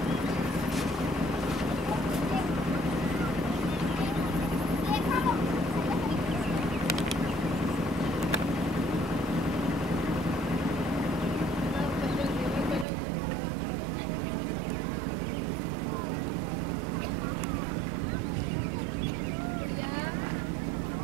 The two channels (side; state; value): left; drops out; at 12.9 s